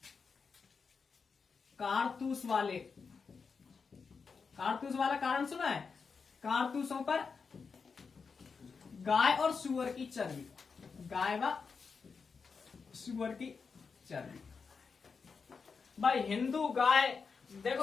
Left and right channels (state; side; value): quieter; right; 5.3 dB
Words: कारतूस वाला कारण सुना है? कारतूसों पर गाय और सुअर की चर्बी, गाय व सुअर की चर्बी। भाई हिंदू गाय,